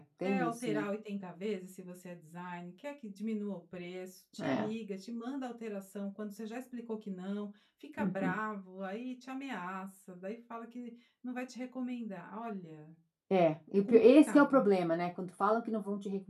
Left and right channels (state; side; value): identical; both; correlation 1.00